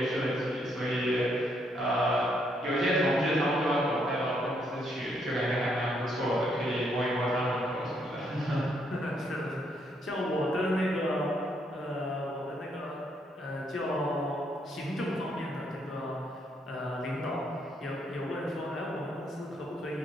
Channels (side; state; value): both; normal; correlation 0.73